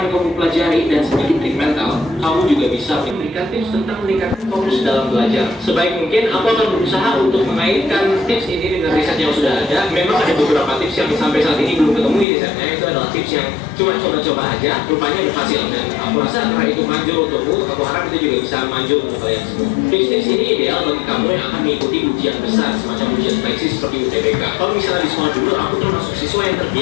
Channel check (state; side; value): drops out; right; at 12.2 s